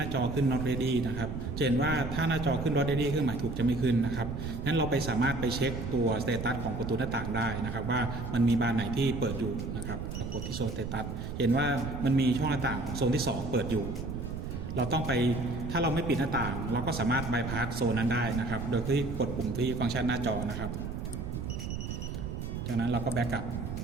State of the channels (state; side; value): noise; right; rumble, 5 dB below the sound